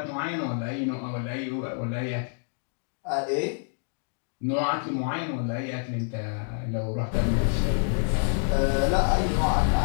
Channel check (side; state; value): right; silent; 60 dB below the other